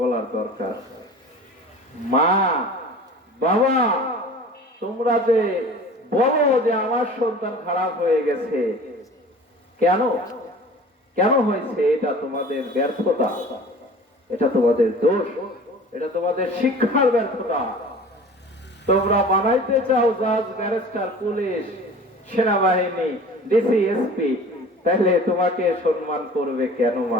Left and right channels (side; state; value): both; normal; correlation 0.42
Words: দরকার। মা, বাবা, তোমরা যে বলো যে আমার সন্তান খারাপ হয়ে গেছে, কেন কেন হয়েছে? এটা তোমাদের ব্যর্থতা, এটা তোমাদের দোষ, এটা তোমাদের শিক্ষার ব্যর্থতা। তোমরা বানাইতে চাও জাজ, ব্যারিস্টার, পুলিশ, সেনাবাহিনী, ডিসি, এসপি, তাহলে তোমাকে সম্মান করবে কেন